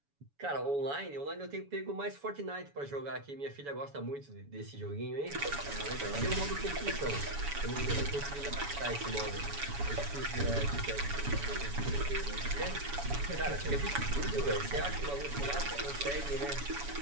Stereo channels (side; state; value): left; late; 7.1 ms